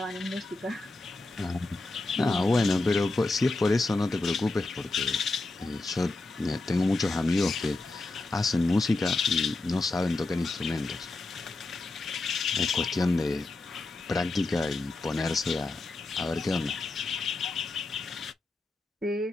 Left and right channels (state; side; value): quieter; right; 3.1 dB